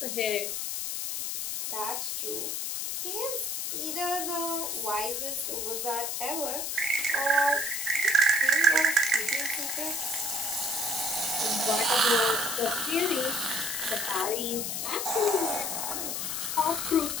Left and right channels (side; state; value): left; noise; hiss, 2 dB below the sound